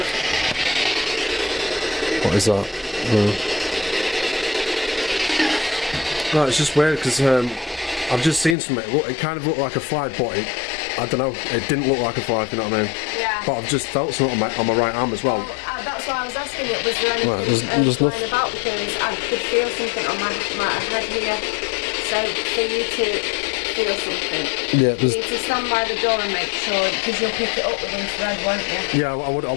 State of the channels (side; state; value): right; drops out; at 8.6 s